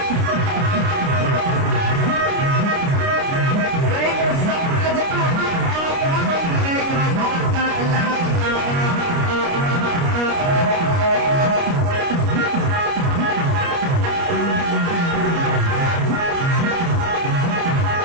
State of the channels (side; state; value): left; late; 29 ms